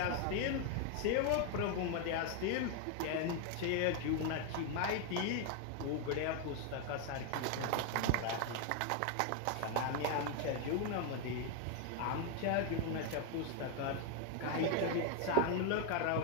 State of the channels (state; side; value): different; both; correlation 0.01